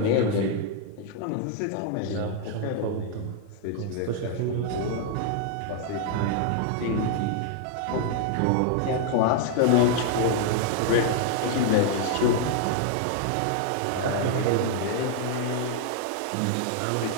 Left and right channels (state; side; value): different; both; correlation 0.00